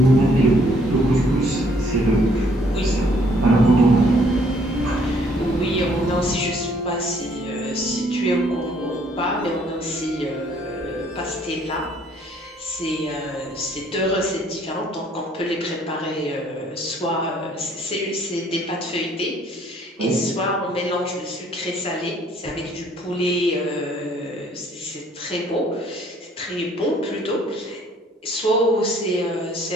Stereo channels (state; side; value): normal; both; correlation 0.63